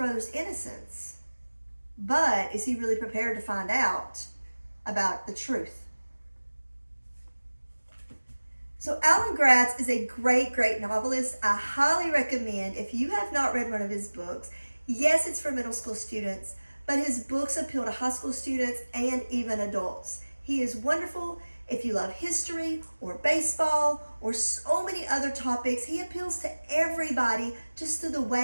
innocence. But is he really prepared to find out about the truth? So Alan Gratz is a great, great novelist. I highly recommend, if you have not read one of his books, yes, it's for middle school students, but his books appeal to high school students and even adults. He is wonderful. If you love history or baseball or so many other topics, he appeals to everybody just through the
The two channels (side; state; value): both; inverted; correlation -1.00